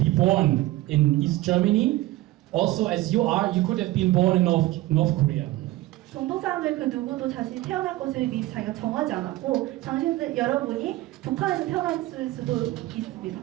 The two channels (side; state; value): left; quieter; 17.4 dB